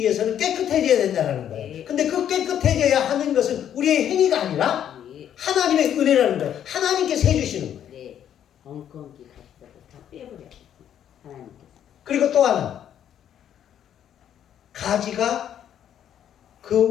깨끗해져야 된다는 거예요. 근데 그 깨끗해져야 하는 것은 우리의 행위가 아니라 하나님의 은혜라는 거예요. 하나님께서 해주시는 거예요. 네. 엉겅기 가시다고 다 빼버려. 하나님께서. 그리고 또 하나. 가지가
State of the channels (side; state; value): right; quieter; 10.0 dB